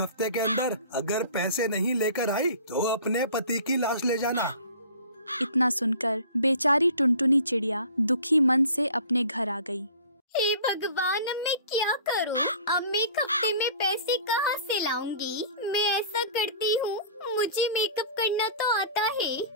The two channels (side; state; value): both; inverted; correlation -0.45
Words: हफ्ते के अंदर अगर पैसे नहीं लेकर आई तो अपने पति की लाश ले जाना। इतना सुनकर बेचारी टुनटुनी चिड़िया दुखी मन से अपने घर आ गई। हे भगवान, अब मैं क्या करूं? अब मैं 1 हफ्ते में पैसे कहां से लाऊंगी? मैं ऐसा करती हूँ, मुझे मेकअप करना तो आता